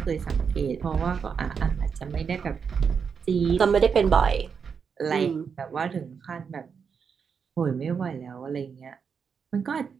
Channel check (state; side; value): quieter; left; 6.3 dB